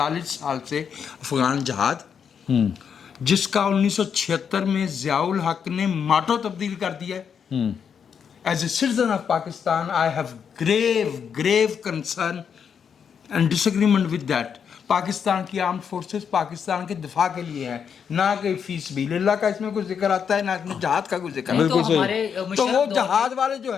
سال سے افغان جہاد جس کا 1976 میں ضیاء الحق نے ماٹو تبدیل کر دیا ہے. As a citizen of Pakistan, I have grave concern and disagreement with that. Pakistan کی آرمڈ فورسز پاکستان کے دفاع کے لیے ہیں, نہ کہ فی سبیل اللہ کا اس میں کوئی ذکر آتا ہے نہ اس میں جہاد کا کوئی ذکر آتا ہے. تو وہ جہاد والے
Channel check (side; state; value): right; quieter; 7.2 dB